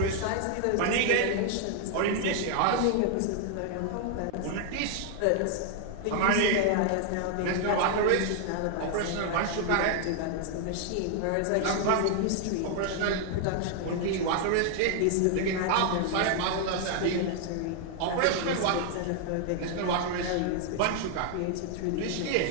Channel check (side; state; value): both; different; correlation 0.00